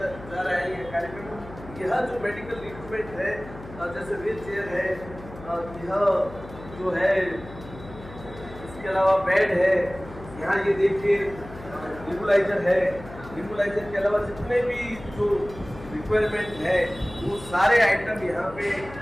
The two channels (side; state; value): left; noise; hum, 16 dB below the sound